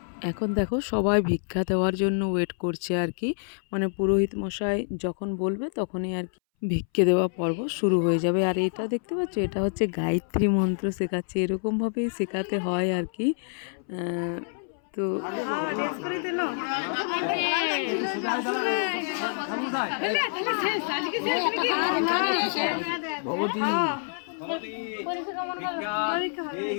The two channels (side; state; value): right; silent; 60 dB below the other